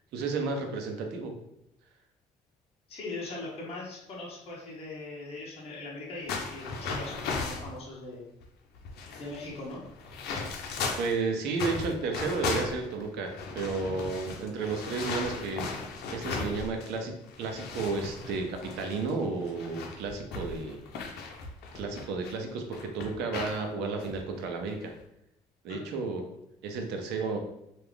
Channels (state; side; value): normal; both; correlation 0.38